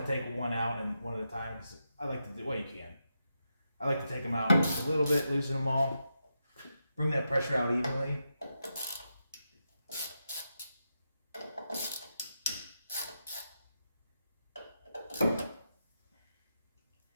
take one out and one at a time, because I like to do, well, you can. I like to take them out just a little bit, loosen them all, bring that pressure out evenly.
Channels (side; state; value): both; inverted; correlation -0.86